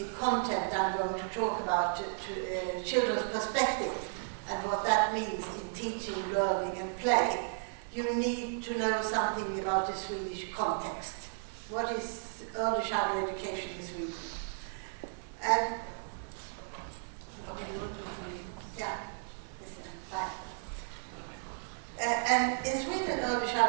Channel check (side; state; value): left; silent; digital silence